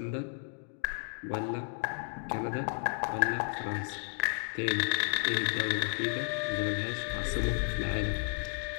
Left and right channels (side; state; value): right; silent; 56 dB below the other